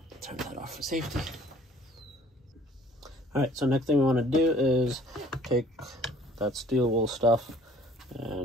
Turn that off for safety. All right, so next thing we want to do is take that steel wool stuff,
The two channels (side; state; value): both; normal; correlation 0.55